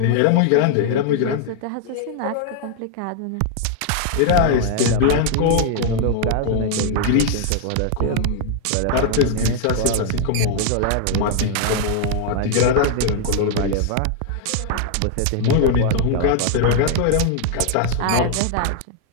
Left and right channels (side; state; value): both; different; correlation 0.00